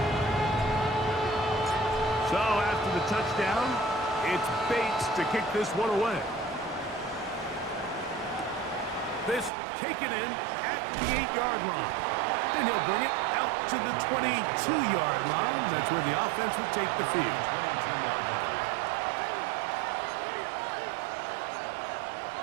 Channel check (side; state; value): left; drops out; at 9.5 s